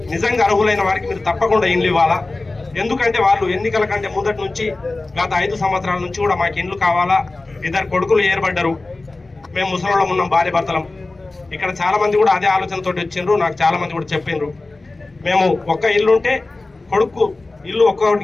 నిజంగా అర్హులైన వారికి మీరు తప్పకుండా ఇండ్లు ఇవ్వాలా. ఎందుకంటే వాళ్ళు ఎన్నికల కంటే ముందటి నుంచి గత 5 సంవత్సరాల నుంచి కూడా మాకు ఇండ్లు కావాలా, 2 కొడుకులు ఏర్పడ్డారు, మేము ముసలోళ్ళం ఉన్నాం, భార్య భర్తలం. ఇక్కడ చాలా మంది కూడా అదే ఆలోచనతో వచ్చిండ్రు. నాకు చాలా మంది కూడా చెప్పిండ్రు, మేము ఒక్క ఇల్లు ఉంటే కొడుకు ఇల్లు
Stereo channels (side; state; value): right; quieter; 3.2 dB